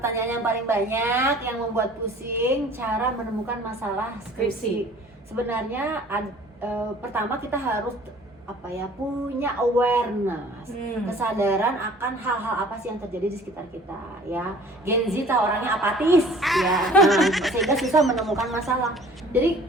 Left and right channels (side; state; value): both; normal; correlation 0.50